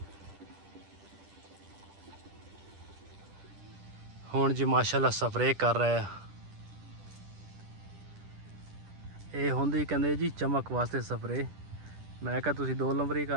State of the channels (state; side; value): late; left; 10 ms